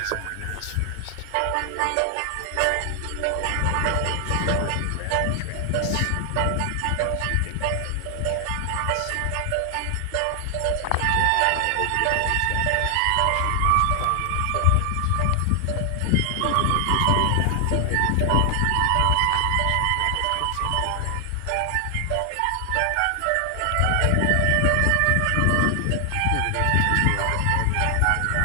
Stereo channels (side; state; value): both; different; correlation 0.00